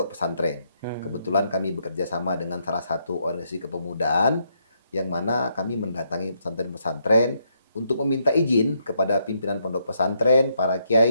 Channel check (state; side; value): inverted; both; correlation -0.76